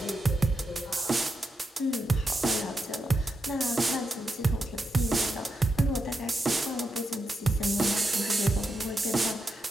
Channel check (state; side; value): normal; both; correlation 0.85